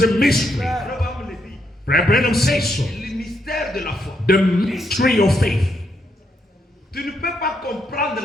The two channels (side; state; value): both; normal; correlation 0.78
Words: a mystery. Abraham le dit. Brother Branham says so. Le mystère de la foi. The mystery of faith. Tu ne peux pas comprendre